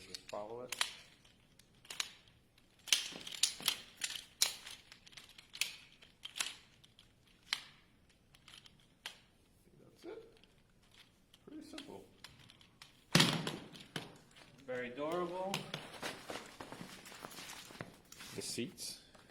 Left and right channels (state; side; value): identical; both; correlation 1.00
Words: just follow it. That's it. Pretty simple. Very durable. The seats